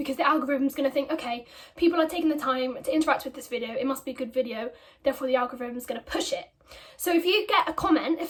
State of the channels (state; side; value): identical; both; correlation 1.00